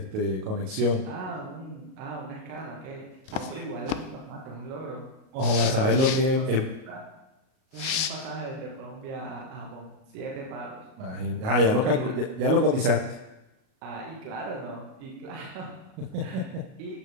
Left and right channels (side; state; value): left; late; 38 ms